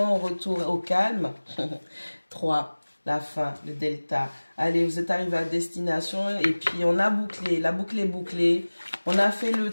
retour au calme. 3, la fin, le delta. Allez, vous êtes arrivé à destination et puis on a bouclé, la boucle est bouclée. On a fait le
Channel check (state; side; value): inverted; both; correlation -1.00